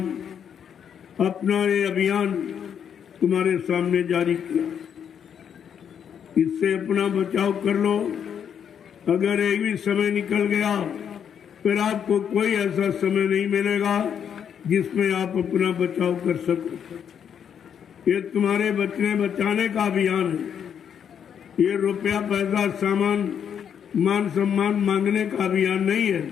अपना ये अभियान तुम्हारे सामने जारी किया। इससे अपना बचाव कर लो। अगर एक भी समय निकल गया फिर आपको कोई ऐसा समय नहीं मिलेगा जिसमें आप अपना बचाव कर सको। ये तुम्हारे बचने बचाने का अभियान है। ये रुपया पैसा सामान मान सम्मान मांगने का अभियान नहीं है।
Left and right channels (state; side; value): quieter; right; 8.2 dB